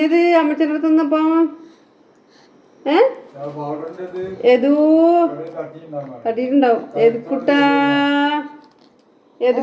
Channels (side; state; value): both; identical; correlation 1.00